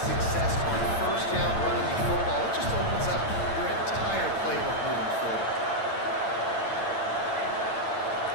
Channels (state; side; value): late; right; 8.9 ms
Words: on first down running the football, it just opens up your entire playbook moving forward.